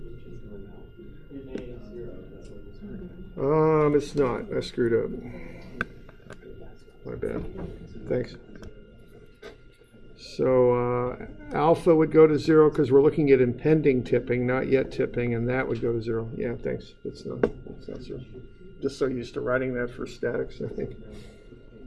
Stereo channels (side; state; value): both; identical; correlation 1.00